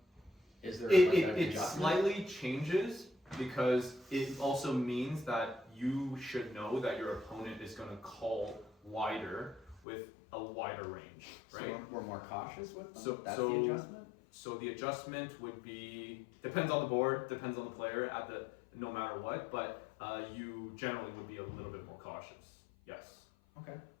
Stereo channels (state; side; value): drops out; right; at 9.8 s